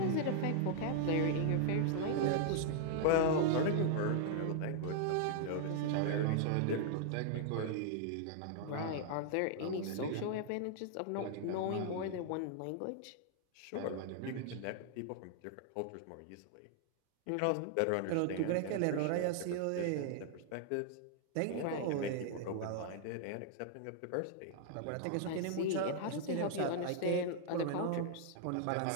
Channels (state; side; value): different; both; correlation -0.01